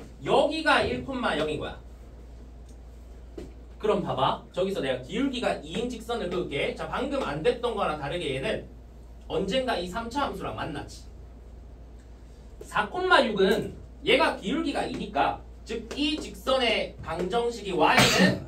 여기가 1,0인 거야. 그럼 봐봐. 저기서 내가 기울기가 2인 직선을 그을게. 자, 방금 안 됐던 거랑 다르게 얘는 언젠가 이 3차 함수랑 만나지. 4,6은 얘가 기울기가 2니까 즉 이 직선의 방정식이 y는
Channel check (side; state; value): both; identical; correlation 1.00